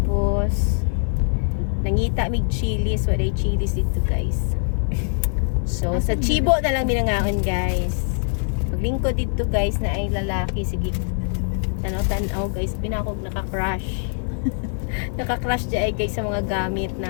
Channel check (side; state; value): right; silent; 64 dB below the other